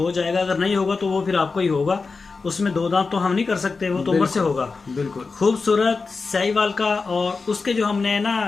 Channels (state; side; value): quieter; right; 4.3 dB